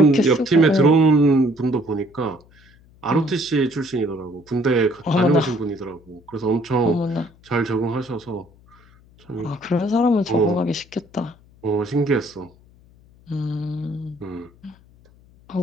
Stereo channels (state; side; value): noise; left; hum, 28 dB below the sound